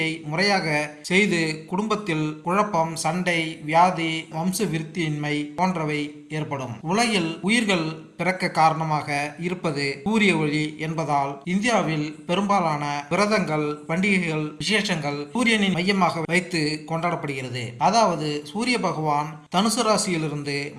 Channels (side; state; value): both; identical; correlation 1.00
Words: முறையாக செய்து குடும்பத்தில் குழப்பம், சண்டை, வியாதி, வம்ச விருத்தியின்மை போன்றவை ஏற்படும். உலகில் உயிர்கள் பிறக்க காரணமாக இருப்பது சூரிய ஒளி என்பதால் இந்தியாவில் பெரும்பாலான விரதங்கள், பண்டிகைகள், விசேஷங்கள் சூரியனின் மையமாக வைத்து கொண்டாடப்படுகிறது. அதாவது சூரிய பகவான் தனுசு ராசியிலிருந்து